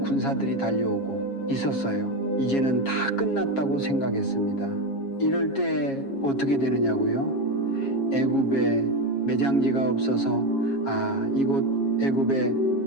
군사들이 달려오고 있었어요. 이제는 다 끝났다고 생각했습니다. 이럴 때 어떻게 되느냐고요? 애굽에 매장지가 없어서 이곳 애굽에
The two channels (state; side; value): late; right; 7.3 ms